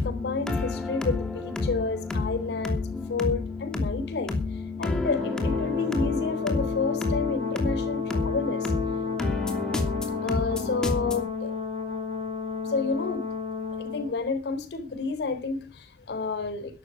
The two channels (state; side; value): quieter; right; 3.7 dB